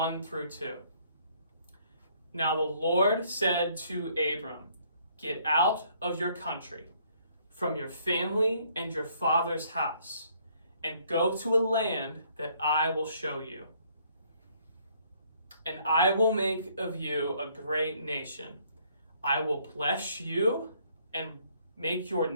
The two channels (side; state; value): both; inverted; correlation -0.65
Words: through 2. Now the Lord said to Abram, "Get out of your country, from your family and your father's house, and go to a land that I will show you. And I will make of you a great nation. I will bless you and make your